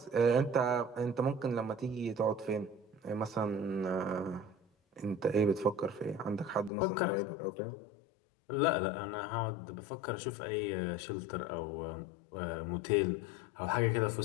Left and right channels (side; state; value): right; drops out; at 6.7 s